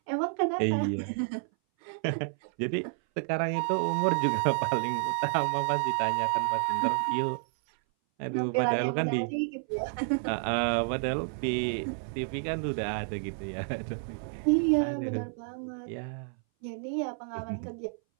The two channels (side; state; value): left; silent; 58 dB below the other